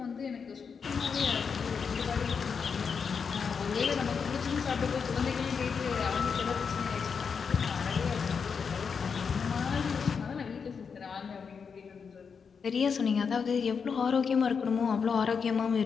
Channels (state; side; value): quieter; right; 6.0 dB